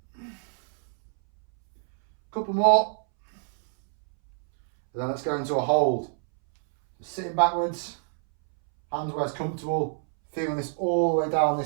Couple more. And then let's go into a hold. So sitting backwards, hands where it's comfortable, feeling this all the way down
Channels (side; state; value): left; silent; 61 dB below the other